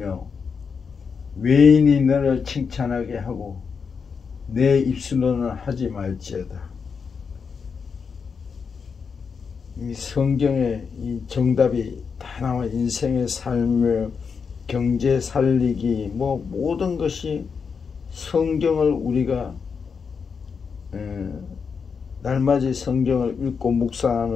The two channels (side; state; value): right; quieter; 5.8 dB